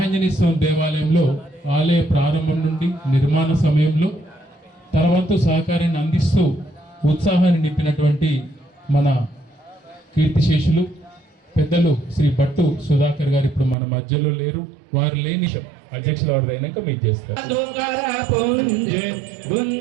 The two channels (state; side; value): drops out; left; at 13.8 s